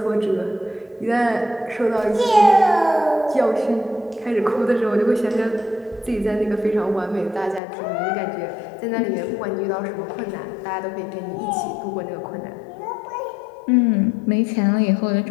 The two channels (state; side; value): drops out; right; at 7.6 s